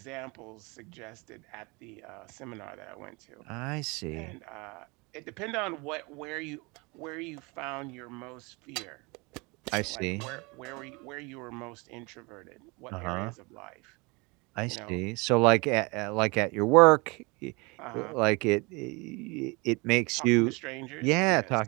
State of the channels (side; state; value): left; quieter; 27.5 dB